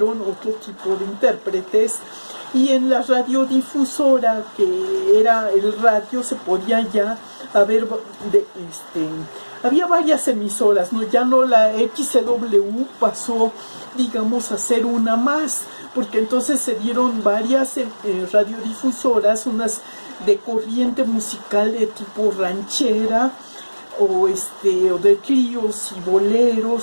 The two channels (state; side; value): inverted; both; correlation -1.00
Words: otro tipo de intérpretes, y en la radiodifusora, que era el radio, se podía ya haber había varias emisoras, ¿no? Ya no, la XCW pasó, digamos, a ser una más, porque entonces se dieron varias radiodifusoras, unas de corriente musical de tipo ranchera, o de tríos y